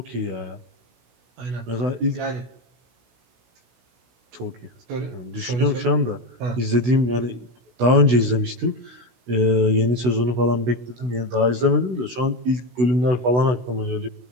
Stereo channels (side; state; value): left; late; 16 ms